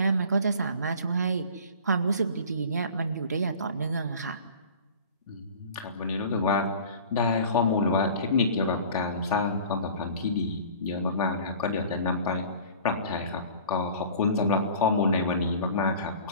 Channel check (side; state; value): both; inverted; correlation -0.43